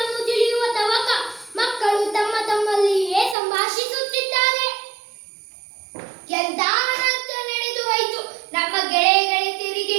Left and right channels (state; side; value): drops out; left; at 3.4 s